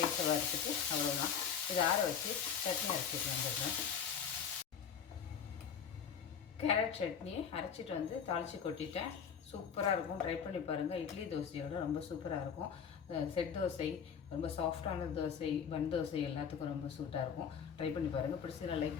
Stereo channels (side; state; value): right; quieter; 7.4 dB